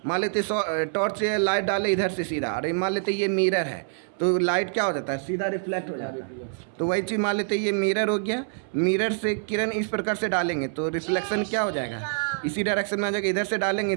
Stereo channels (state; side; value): silent; left; 61 dB below the other